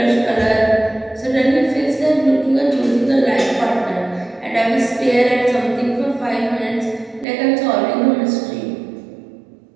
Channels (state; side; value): drops out; left; at 7.2 s